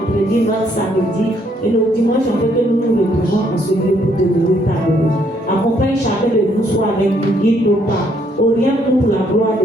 notre samedi et nos dimanches, en fait que nous nous retrouvons en ce lieu pour te louer ta gloire. Accompagne chacun de nous, soit avec nous, guide nos pas, oriente-nous pour la gloire de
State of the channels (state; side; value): normal; both; correlation 0.69